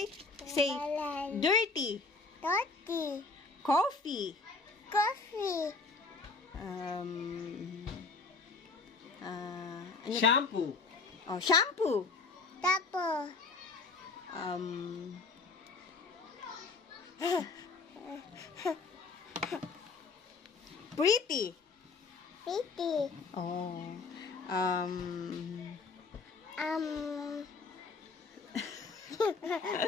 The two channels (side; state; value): right; quieter; 4.1 dB